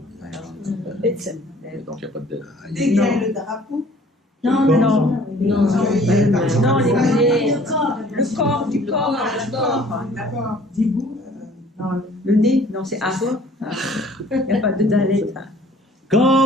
Betsen. Donc, il n'y a pas de dette. Dégager le drapeau. Non, Non. Non. Non, les pieds. Le Le corps, du corps, le corps. D'accord. Dibou. Le nez, non, c'est A. Il n'y a pas de dalet.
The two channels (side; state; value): both; normal; correlation 0.54